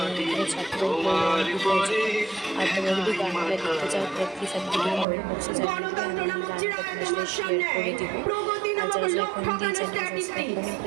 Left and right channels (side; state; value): left; drops out; at 5.1 s